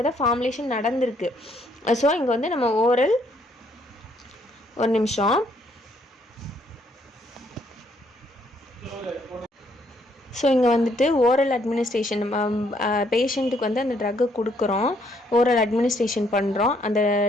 தான் ஃபார்முலேஷன் நடந்திருக்கு. ஸோ இங்கே வந்து நம்ம ஓரல், ஒரு நிமிஷம், ஸோ இங்கே வந்துட்டு ஓரல் அட்மினிஸ்ட்ரேஷன், பேஷண்ட்டுக்கு வந்து அந்த ட்ரக்கை கொடுக்குறோம், ஓரல் அட்மினிஸ்ட்ரேஷன் பண்ணுறோம். அந்த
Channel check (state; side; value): normal; both; correlation 0.69